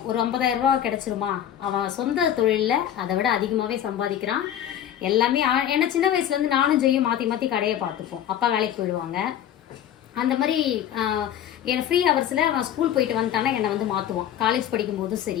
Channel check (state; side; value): quieter; right; 10.4 dB